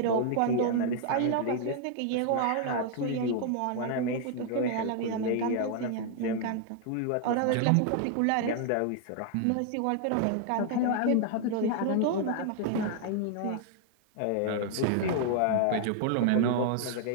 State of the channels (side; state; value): both; different; correlation 0.00